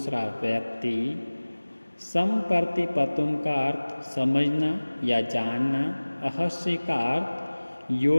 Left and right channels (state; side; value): inverted; both; correlation -1.00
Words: व्यक्ति, संप्रति पतुम का अर्थ समझना या जानना, अहर्षि का अर्थ